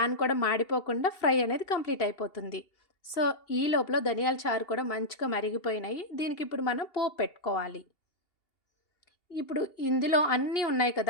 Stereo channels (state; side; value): late; right; 2.8 ms